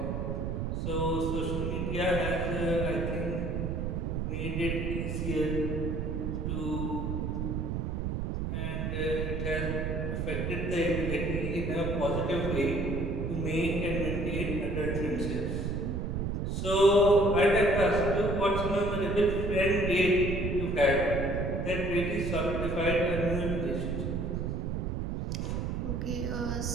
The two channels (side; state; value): right; noise; rumble, 1 dB below the sound